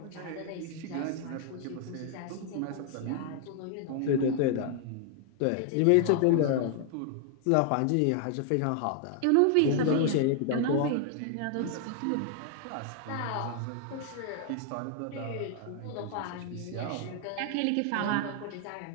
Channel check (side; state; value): both; different; correlation 0.00